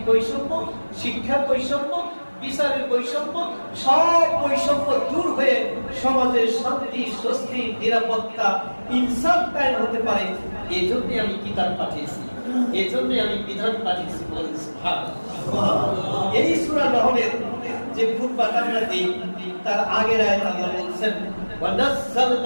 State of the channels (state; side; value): inverted; both; correlation -1.00